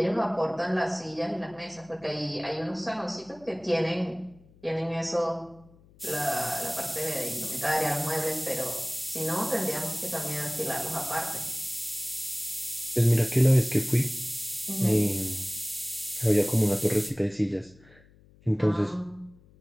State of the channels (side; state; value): left; noise; hum, 27 dB below the sound